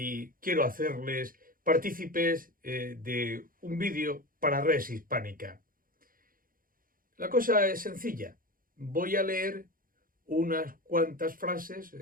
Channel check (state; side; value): late; left; 0.41 ms